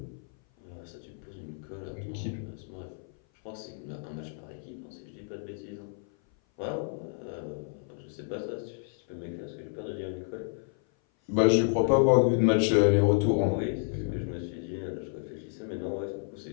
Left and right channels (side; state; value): right; silent; 56 dB below the other